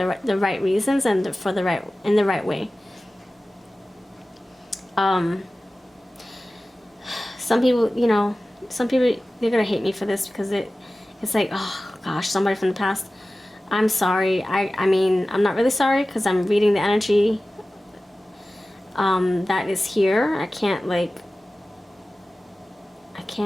right reasons and in the right way. Some people, they're gonna hate me for this because it's like, oh gosh, somebody from the past. I'm sorry. I mean, I'm not really sorry because I'm reading the energy that is here. I can't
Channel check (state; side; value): normal; both; correlation 0.96